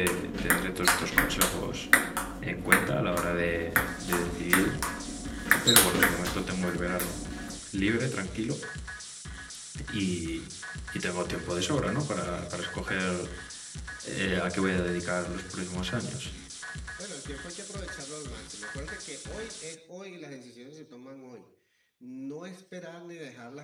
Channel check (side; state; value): both; identical; correlation 1.00